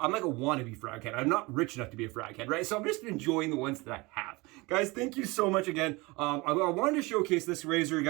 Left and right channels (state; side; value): quieter; left; 24.1 dB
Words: like a wannabe frag head. I'm not rich enough to be a frag head, right? So I'm just enjoying the ones that I have. Guys, thank you so much again. I wanted to showcase this razor,